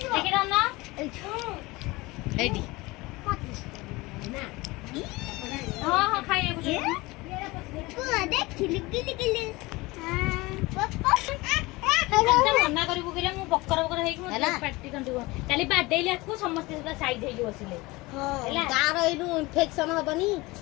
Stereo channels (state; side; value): quieter; right; 22.1 dB